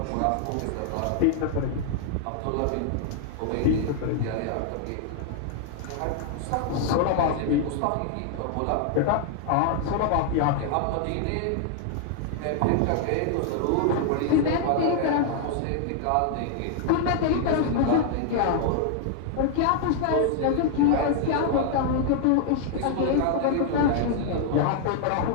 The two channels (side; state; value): both; different; correlation -0.01